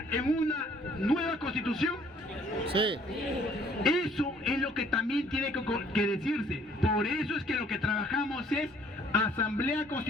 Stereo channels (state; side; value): normal; both; correlation 0.59